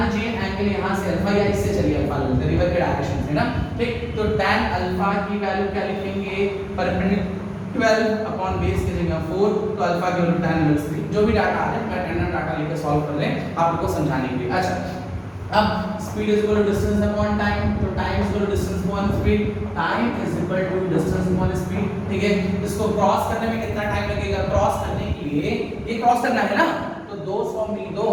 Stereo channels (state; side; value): identical; both; correlation 1.00